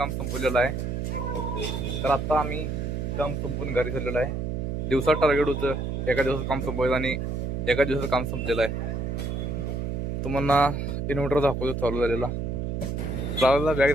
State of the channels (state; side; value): noise; right; hum, 2 dB below the sound